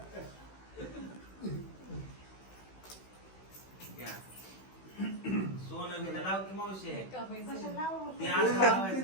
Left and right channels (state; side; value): late; right; 16 ms